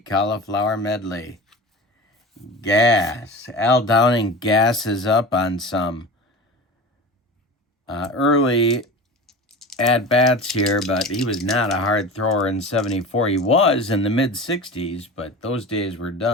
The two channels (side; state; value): both; normal; correlation 0.32